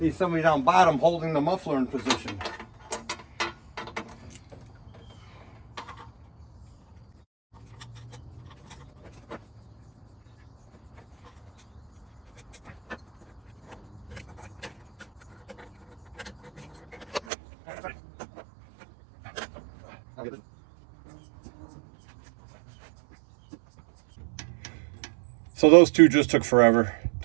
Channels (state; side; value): drops out; left; at 17.2 s